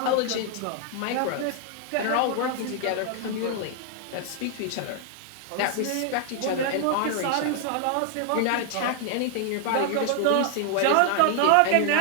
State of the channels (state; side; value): different; both; correlation 0.00